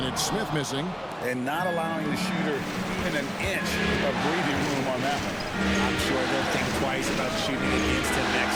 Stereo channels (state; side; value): identical; both; correlation 1.00